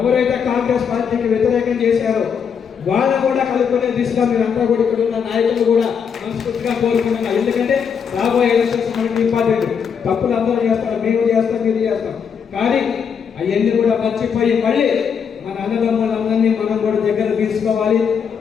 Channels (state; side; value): quieter; right; 6.9 dB